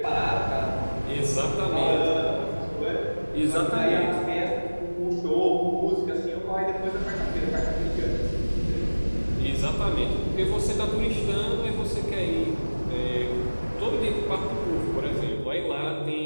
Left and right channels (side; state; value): both; inverted; correlation -1.00